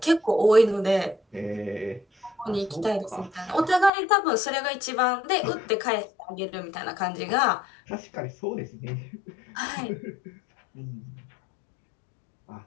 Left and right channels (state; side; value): drops out; right; at 3.9 s